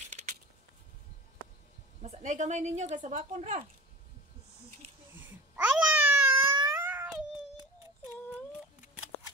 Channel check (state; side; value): normal; both; correlation 0.37